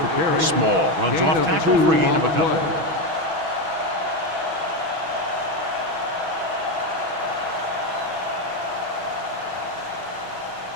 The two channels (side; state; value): left; late; 6.2 ms